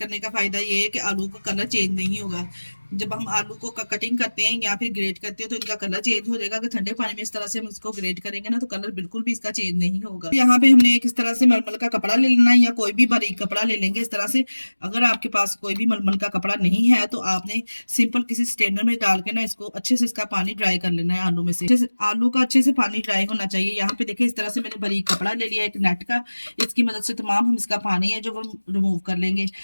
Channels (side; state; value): both; inverted; correlation -1.00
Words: का फायदा ये है कि आलू का कलर चेंज नहीं होगा। जब हम आलू को कटिंग करते हैं या फिर ग्रेट करते हैं तो इनका कलर चेंज हो जाएगा। कि ठंडे पानी में इस तरह से हम इसको ग्रेट करेंगे ना तो कलर बिल्कुल भी इसका चेंज नहीं होगा। यहाँ पे हमने एक इस तरह से मलमल का कपड़ा ले लेना है या कोई भी बारीक कपड़ा ले लेंगे इस तरह से। अगर आपके पास कोई भी मलमल का कपड़ा नहीं है तो आपने सिंपल किसी स्ट्रेनर में डाल के ना इसको अच्छे से इसका पानी ड्राई कर लेना है। आलू में से आलू का अच्छे से पानी ड्राई होना चाहिए। यहाँ पे देखिए इस तरह से मैंने बारीक कपड़ा ले लिया एक नेट का। इसकी मदद से तमाम हम इसका पानी है जो वो रिमूव कर लेंगे।